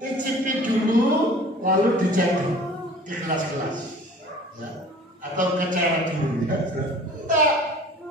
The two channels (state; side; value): normal; both; correlation 0.47